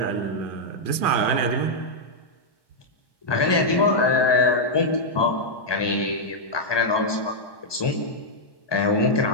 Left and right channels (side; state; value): right; late; 1.2 ms